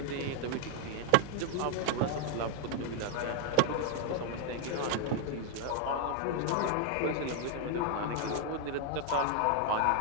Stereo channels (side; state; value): both; different; correlation 0.00